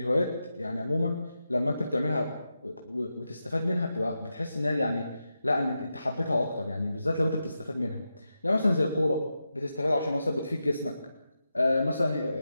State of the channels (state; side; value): inverted; both; correlation -0.88